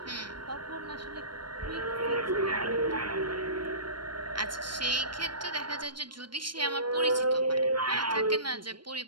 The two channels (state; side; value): late; left; 0.72 ms